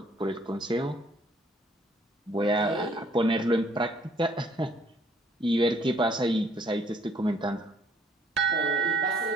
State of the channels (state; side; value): normal; both; correlation 0.63